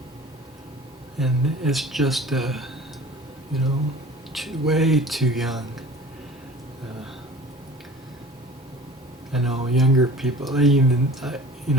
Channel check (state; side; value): normal; both; correlation 0.43